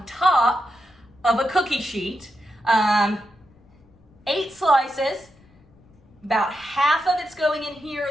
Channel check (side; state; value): left; noise; rumble, 29 dB below the sound